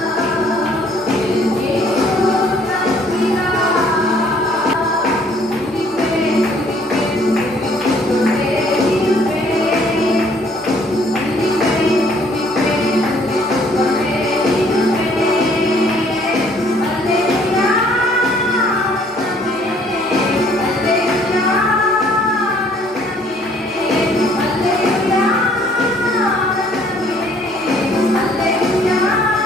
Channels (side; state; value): both; normal; correlation 0.61